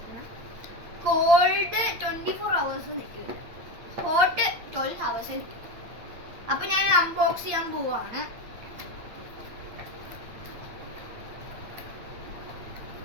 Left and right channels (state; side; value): late; left; 8.8 ms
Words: Called 24 hours നിൽക്കില്ല, ഹോട്ട് 12 hours നിൽക്കും. അപ്പൊ ഞാൻ അൺബോക്സ് ചെയ്യാൻ പോവാണ്.